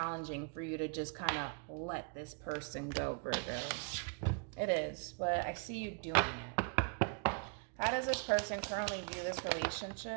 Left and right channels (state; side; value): quieter; left; 37.5 dB